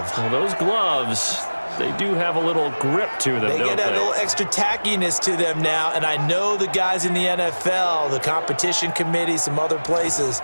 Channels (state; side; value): inverted; both; correlation -1.00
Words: Well, those gloves, they do have a little grip to them, They don't get a little extra tackiness to them now, and I know the guys in the NFL, the competition committee, some other places,